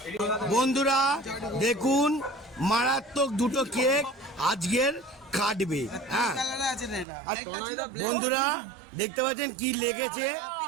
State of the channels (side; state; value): left; drops out; at 7.1 s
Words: বন্ধুরা দেখুন মারাত্মক দুটো কেক আজকের কাটবে। হ্যাঁ বন্ধুরা দেখতে পাচ্ছেন কি লেগেছে,